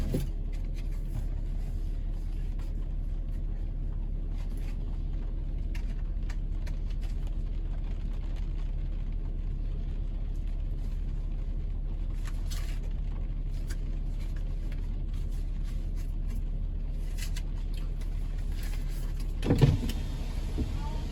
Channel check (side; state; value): both; identical; correlation 1.00